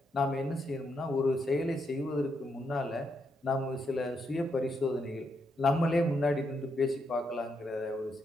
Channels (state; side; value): normal; both; correlation 0.79